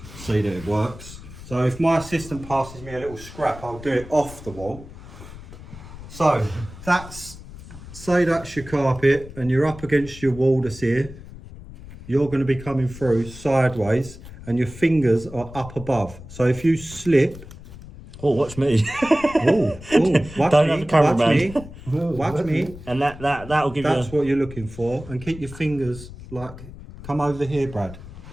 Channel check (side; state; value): left; noise; rumble, 15 dB below the sound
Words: see that it works. So if my assistant passes me a little scrap, I'll do it off the wall. So say that's your carpet and you're up against your wall that's here. You're going to be coming through sideways and your fingers are up above. So if you slip... Oh, watch me. watch Don't have the cameraman. Watch me. And that'll give you... That's what you're looking for. And keep your fingers like... Come over here, Brad.